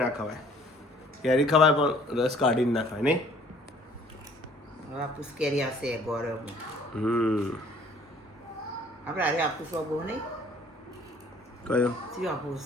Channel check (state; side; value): normal; both; correlation 0.56